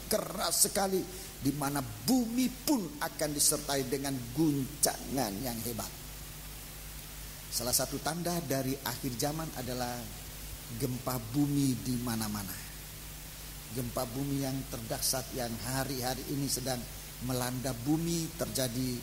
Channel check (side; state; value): both; identical; correlation 1.00